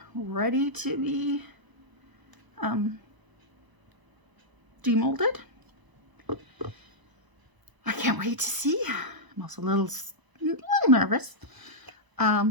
ready to be demolded. I can't wait to see. I'm also a little nervous.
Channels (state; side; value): late; left; 1.0 ms